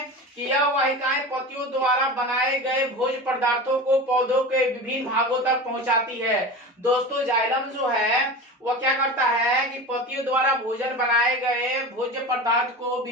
कि यह वाहिकाएं पत्तियों द्वारा बनाए गए भोज्य पदार्थों को पौधों के विभिन्न भागों तक पहुंचाती है। दोस्तों जाइलम जो है वह क्या करता है कि पत्तियों द्वारा भोजन बनाए गए भोज्य पदार्थ को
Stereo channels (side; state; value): both; normal; correlation 0.30